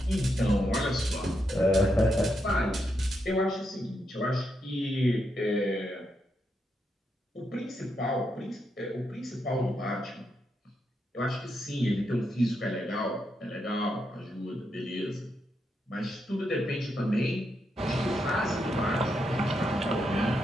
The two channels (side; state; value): both; normal; correlation 0.82